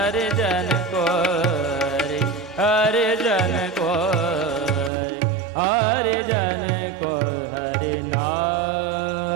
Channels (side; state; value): left; drops out; at 4.9 s